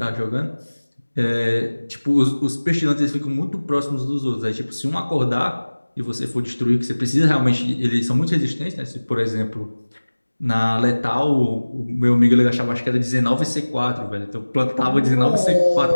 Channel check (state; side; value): inverted; both; correlation -1.00